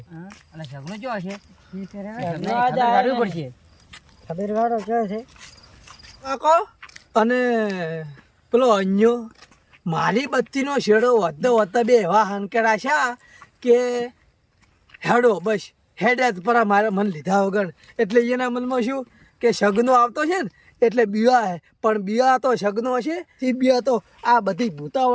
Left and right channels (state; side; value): identical; both; correlation 1.00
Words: સગનો જો હશે અને પેલો અન્યો મારી બત્તીનો શેડો વધતો વધતા બે એવા હાંકેડા છે કે હેડો બસ હેડે જ પરા મારે મન લીધા વગર એટલે એના મનમાં શું કે સગનો આવતો છે ને એટલે બીવા હે પણ બીવા તો સગનો હશે એ બીવા તો આ બધી